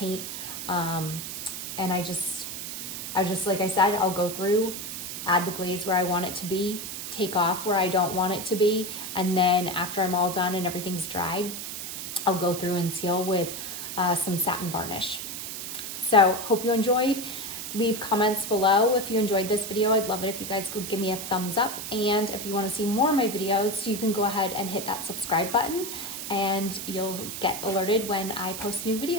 And I just, like I said, I'll go through, add the glaze where I want it to be, take off where I don't want it to be, and then after I'm all done and everything's dried, I'll go through and seal with some satin varnish. So hope you enjoyed. Leave comments below if you enjoyed this video. I'd love it if you guys would give me a thumbs up, and if you want to see more of my videos, you can go ahead and hit that subscribe button and you'll get alerted when I post new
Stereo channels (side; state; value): right; noise; hiss, 7 dB below the sound